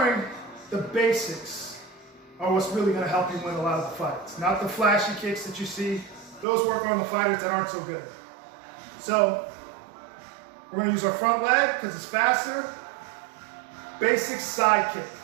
the basics are what's really going to help you win a lot of the fights. Not the flashy kicks that you see. Those work on the fighters that aren't so good. So, we're going to use our front leg because it's faster. Basic side kick.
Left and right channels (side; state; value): left; drops out; at 6.5 s